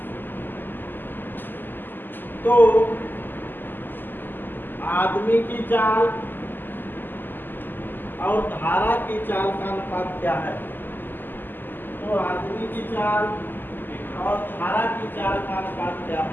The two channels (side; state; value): right; late; 0.091 ms